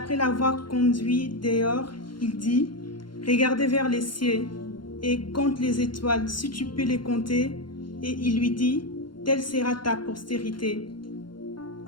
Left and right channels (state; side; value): late; right; 0.72 ms